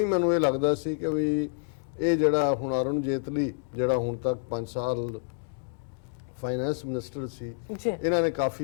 ਮੈਨੂੰ ਇਹ ਲੱਗਦਾ ਸੀ ਕਿ ਵੀ ਇਹ ਜਿਹੜਾ ਹੁਣ ਅਰੁਣ ਜੇਤਲੀ ਜਿਹੜਾ ਹੁਣ ਤੱਕ 5 ਸਾਲ ਫਾਈਨੈਂਸ ਮਿਨਿਸਟਰ ਸੀ, ਇਹਨਾਂ ਨੇ ਕਾਫੀ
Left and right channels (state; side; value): silent; right; 59 dB below the other